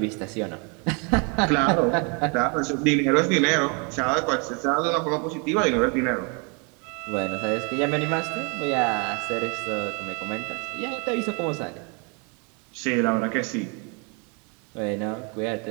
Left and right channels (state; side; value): quieter; left; 34.0 dB